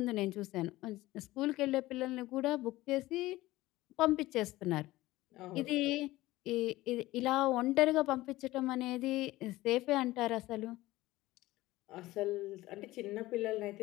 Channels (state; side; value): quieter; right; 17.8 dB